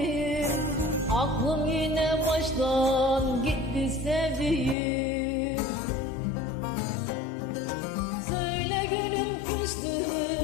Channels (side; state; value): right; drops out; at 4.8 s